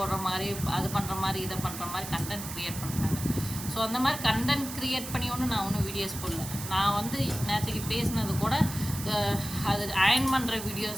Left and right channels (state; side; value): noise; right; hiss, 9 dB below the sound